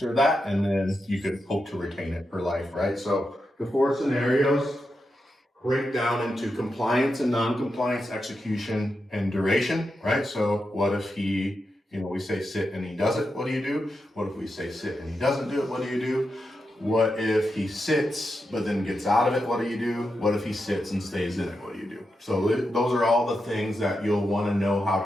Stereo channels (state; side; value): normal; both; correlation 0.87